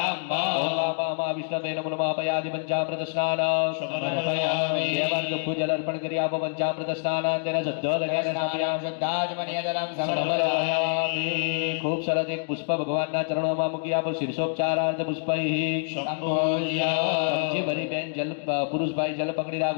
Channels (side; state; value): right; silent; digital silence